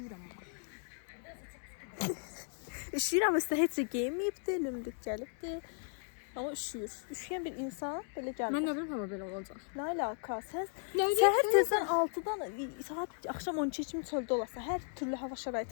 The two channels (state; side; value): silent; right; 54 dB below the other